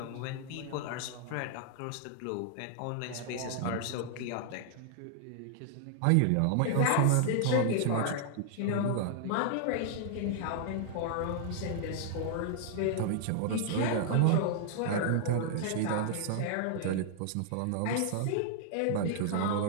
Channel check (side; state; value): both; different; correlation -0.01